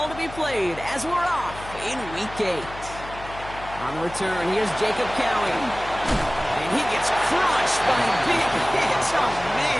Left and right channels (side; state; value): left; noise; hum, 15 dB below the sound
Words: to be played as we're off in Week 8. On the return, here's Jacob Cowie. And he gets crushed by a big hit. Oh,